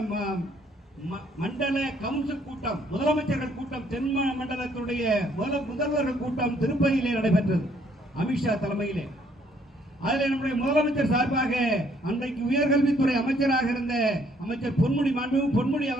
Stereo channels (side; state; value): both; normal; correlation 0.66